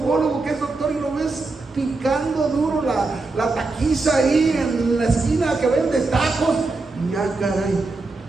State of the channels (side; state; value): left; quieter; 3.5 dB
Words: que es doctor, y lo ves picando duro la taquiza ahí en la esquina que vende tacos. Y ya, caray,